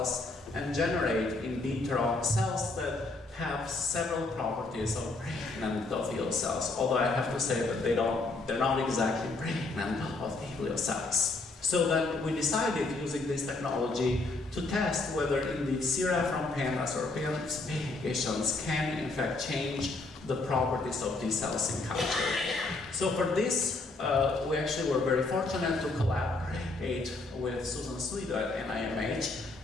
and generate in vitro cells that have several properties of brain endothelial cells, although I have to say that they're not exactly brain endothelial cells. So then we decided, using this technology, to test whether indeed sera from pandas or PANS patients can in fact change the properties of these cells in culture. So for this, we actually were very fortunate to collaborate with Susan Swedo at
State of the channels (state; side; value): quieter; right; 3.3 dB